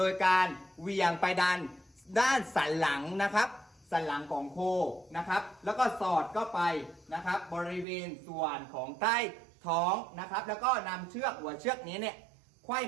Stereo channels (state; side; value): drops out; left; at 7.9 s